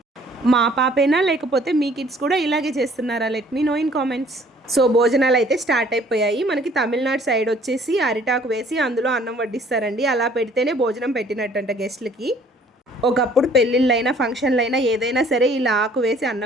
మా పాపేనా లేకపోతే మీ కిడ్స్ కూడా ఇలాగే చేస్తున్నారా? Let me know in comments. So భోజనాలు అయితే స్టార్ట్ అయిపోయాయి. మనకి తమిళనాడు సైడ్ వచ్చేసి అరిటాకు వేసి అందులో అన్నం వడ్డిస్తారండి. అలా పెడితేనే భోజనం పెట్టినట్టంట గెస్ట్లకి. ఒకప్పుడు పెళ్ళిళ్ళైనా ఫంక్షన్లైనా ఏదైనా సరే ఇలా ఆకు వేసి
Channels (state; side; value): normal; both; correlation 0.57